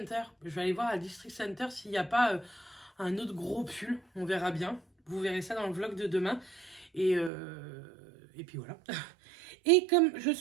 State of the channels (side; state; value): left; drops out; at 7.3 s